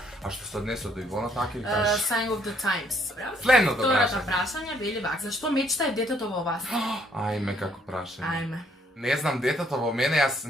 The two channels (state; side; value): normal; both; correlation 0.67